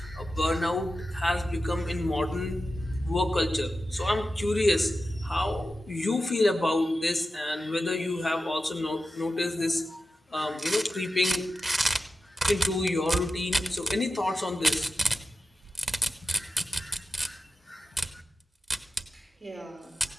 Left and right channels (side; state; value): both; normal; correlation 0.92